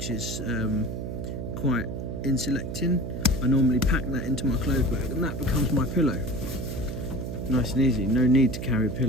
is quite insulating. I normally pack that into my clothes bag, and that becomes my pillow. Nice and easy, no need to carry a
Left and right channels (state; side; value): noise; right; hum, 5 dB below the sound